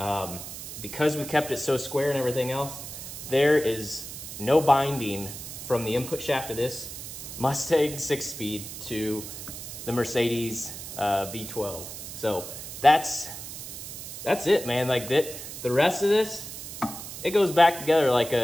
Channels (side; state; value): right; noise; hiss, 10 dB below the sound